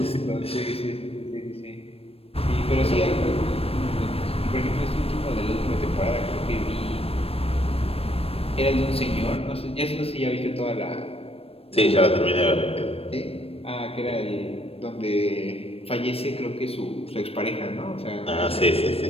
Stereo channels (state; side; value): late; right; 0.28 ms